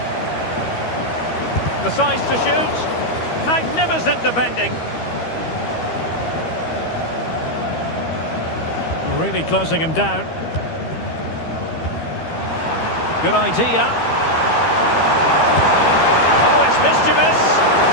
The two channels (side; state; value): right; late; 13 ms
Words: The size to shoot. Magnificent defending. Really closing him down. Good idea. Oh, it's mischievous.